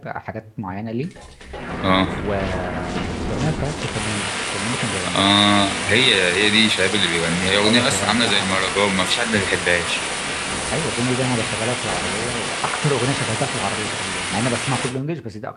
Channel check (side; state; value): both; identical; correlation 1.00